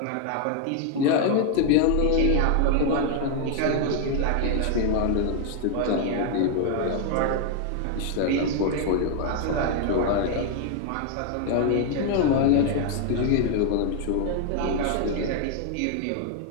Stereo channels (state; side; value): different; both; correlation 0.00